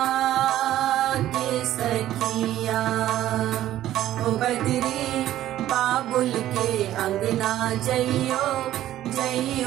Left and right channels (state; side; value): quieter; left; 13.2 dB